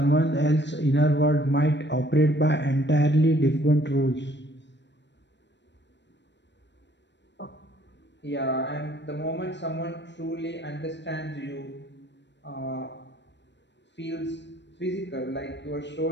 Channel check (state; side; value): late; right; 0.52 ms